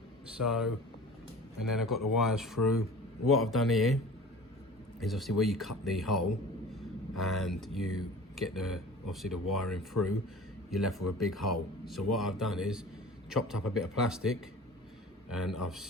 So, and then I've got the wires through. What I've done here is obviously where you cut the hole and you get obviously the wiring through, you're left with a big hole. So what I've done is chopped up a bit of plastic and I've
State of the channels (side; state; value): both; normal; correlation 0.41